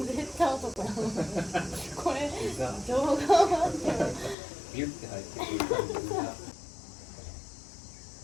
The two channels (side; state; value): right; drops out; at 4.4 s